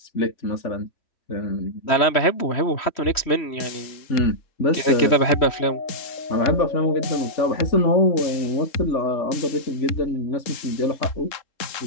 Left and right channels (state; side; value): late; right; 3.1 ms